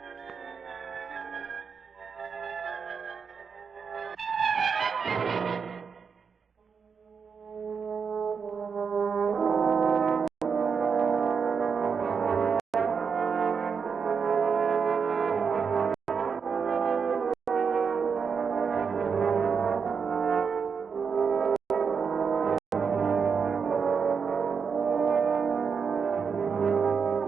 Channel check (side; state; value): left; quieter; 6.0 dB